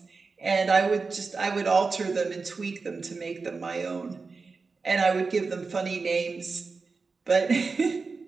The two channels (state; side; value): quieter; left; 4.4 dB